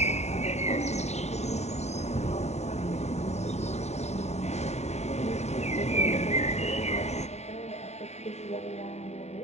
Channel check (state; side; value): late; right; 0.32 ms